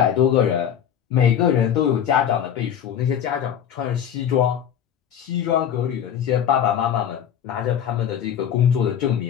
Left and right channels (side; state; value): right; quieter; 9.1 dB